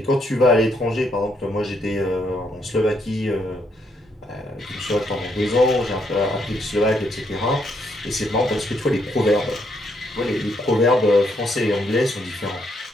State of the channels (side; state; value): both; normal; correlation 0.74